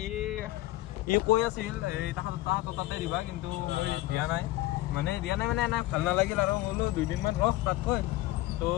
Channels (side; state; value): right; quieter; 17.2 dB